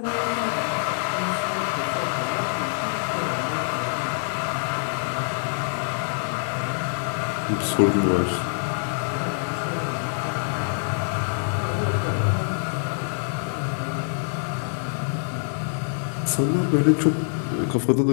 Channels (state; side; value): silent; right; 56 dB below the other